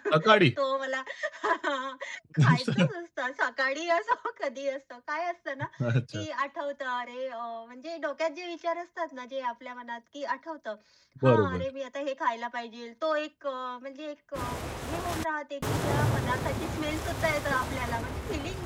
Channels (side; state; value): both; identical; correlation 1.00